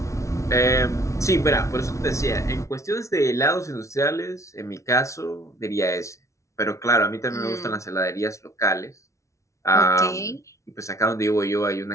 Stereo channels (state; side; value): late; right; 0.14 ms